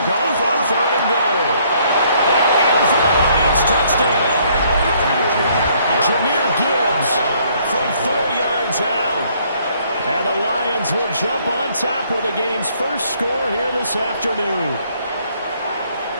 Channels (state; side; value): inverted; both; correlation -0.65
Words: gone for 3rd and goal. And in for the Lions touchdown. Jahmyr Gibbs from 4 yards out. And the Lions will jump on top with the game's first score here this afternoon.